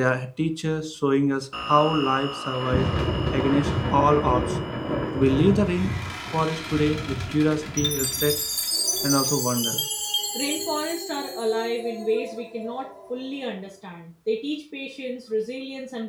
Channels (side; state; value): both; identical; correlation 1.00